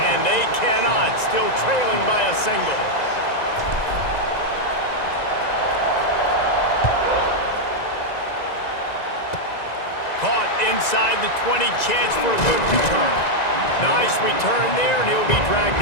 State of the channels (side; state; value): right; late; 1.9 ms